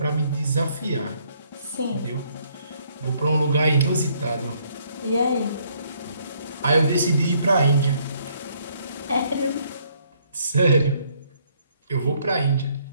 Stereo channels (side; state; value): both; inverted; correlation -0.67